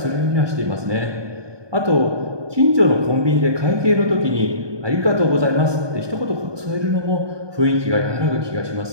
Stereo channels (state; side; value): late; left; 1.2 ms